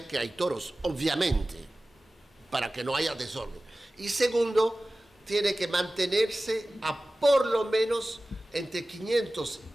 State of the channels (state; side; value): normal; both; correlation 0.97